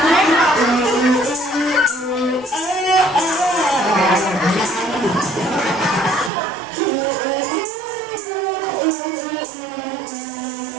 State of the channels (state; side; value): drops out; left; at 6.3 s